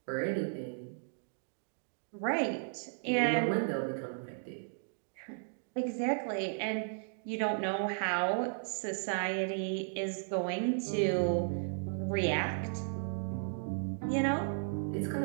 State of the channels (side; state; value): left; silent; digital silence